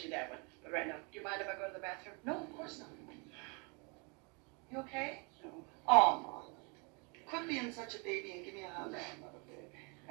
that one. But right now, do you mind if I go to the bathroom? No, of course not. You okay? No. Aw, Mom. Quit being such a baby and give me a hug.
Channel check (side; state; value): left; quieter; 32.7 dB